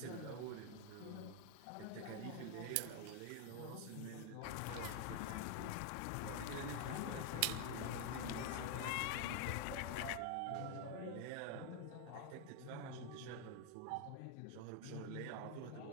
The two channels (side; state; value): both; different; correlation 0.00